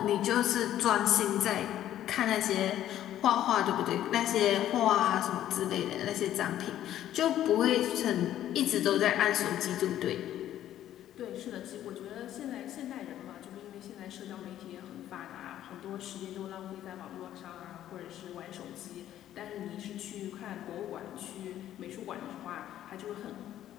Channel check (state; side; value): quieter; right; 12.1 dB